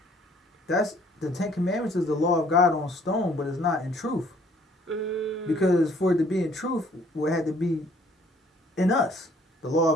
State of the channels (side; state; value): both; normal; correlation 0.60